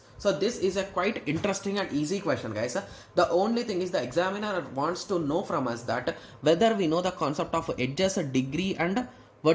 So this is a quite interesting and easy question, guys. The only thing is the examiner wants to know from us that whether we know the concept of edges, degree and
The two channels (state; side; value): identical; both; correlation 1.00